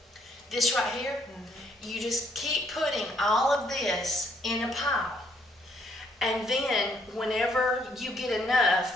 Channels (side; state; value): both; normal; correlation 0.69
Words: This right here, you just keep putting all of this in a pile. And then whenever you get